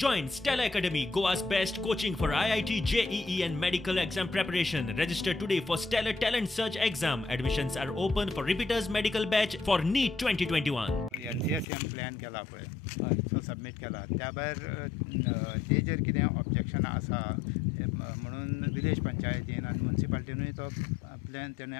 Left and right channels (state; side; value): drops out; right; at 11.7 s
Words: Stella Academy, Goa's best coaching for IIT, JEE and medical exam preparation. Register today for Stellar Talent Search exam. Admissions are open for repeaters medical batch for NEET 2021. NCSM plan केला पळय so submit केला त्या भायर तेजेर कितें ऑब्जेक्शनां आसा म्हणून village पंचायतीन आनी म्युनिसिपालिटीनूय तो प्लॅन तेणें